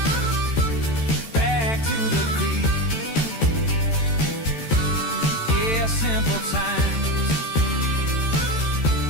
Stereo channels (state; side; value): late; right; 13 ms